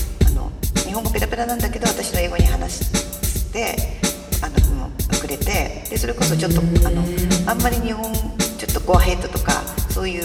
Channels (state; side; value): identical; both; correlation 1.00